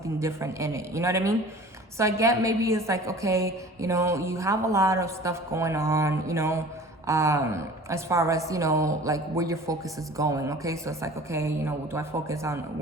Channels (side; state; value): both; normal; correlation 0.43